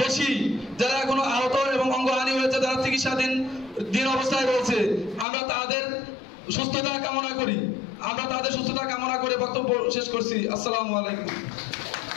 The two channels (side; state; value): right; drops out; at 5.2 s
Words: বেশি যারা এখনো আহত এবং অঙ্গহানি হয়েছে, যারা চিকিৎসাধীন অবস্থায় রয়েছে। আমরা তাদের সুস্থতা কামনা করি, আমরা তাদের সুস্থতা কামনা করে বক্তব্য শেষ করছি। আসসালামু আলাইকুম।